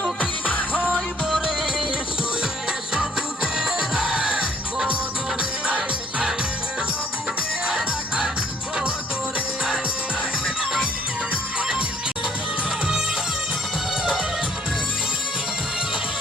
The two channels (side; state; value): both; normal; correlation 0.62